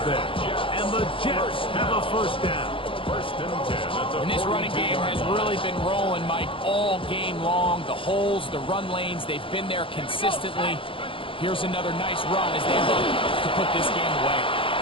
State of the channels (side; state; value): right; late; 0.25 ms